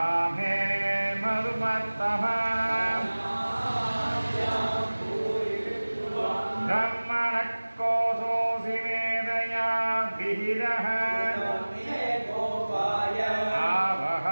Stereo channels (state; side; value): inverted; both; correlation -1.00